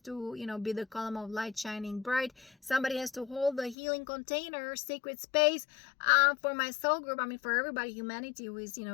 you know, be the column of light shining bright. Somebody has to hold the healing container, sacred space, for my soul group. I mean, for everybody, humanity who is, you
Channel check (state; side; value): drops out; right; at 3.8 s